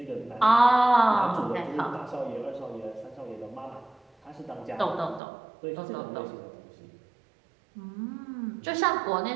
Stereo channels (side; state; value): left; drops out; at 5.2 s